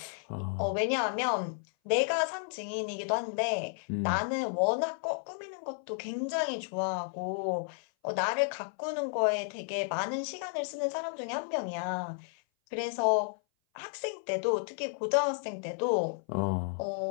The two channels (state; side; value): silent; right; 56 dB below the other